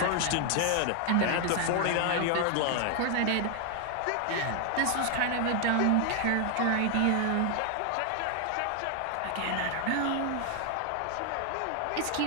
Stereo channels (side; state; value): both; different; correlation 0.00